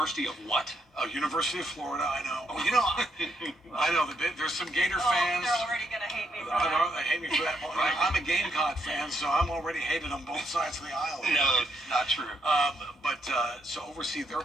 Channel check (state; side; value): normal; both; correlation 0.77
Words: of what? University of Florida, I know. Oh, I know. There's some Gator fans. They're already going to hate me for I that. know, they hate me for that. Right. I'm a Gamecock fan, so I'm already hated on both sides of the aisle. No, not true. So oversee their